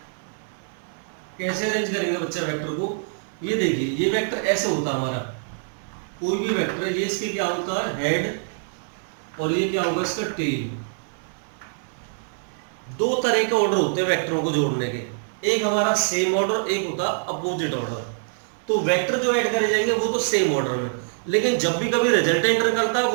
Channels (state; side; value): silent; left; 62 dB below the other